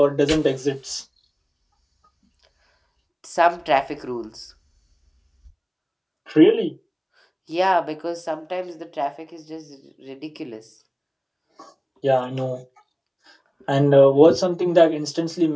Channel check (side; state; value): both; identical; correlation 1.00